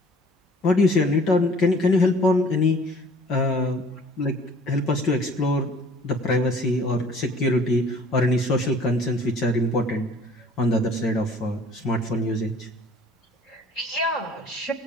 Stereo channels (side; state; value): both; normal; correlation 0.52